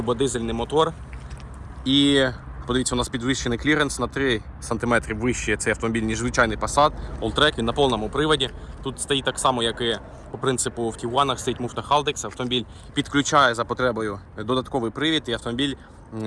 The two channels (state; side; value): identical; both; correlation 1.00